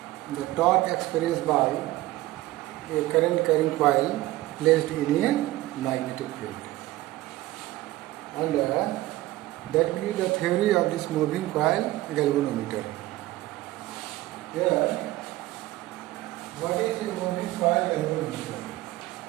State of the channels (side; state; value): left; quieter; 17.3 dB